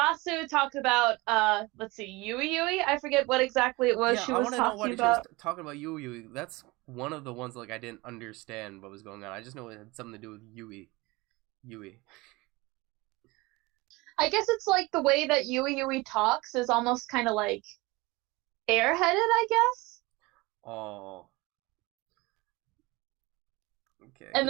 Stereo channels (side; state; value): left; quieter; 22.8 dB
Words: talked about let's see, Yui. I forget what exactly it was she was talking about. I want to know what she was talking about. Yui. That's one of the ones like I didn't understand what was going on. I just know it had something to do with Yui. I guess it's like the way that Yui talks is almost kind of like airheaded, I guess. Oh. Okay. And